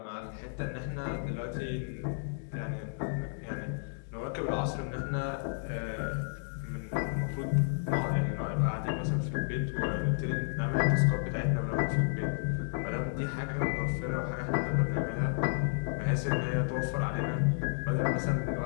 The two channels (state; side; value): silent; right; digital silence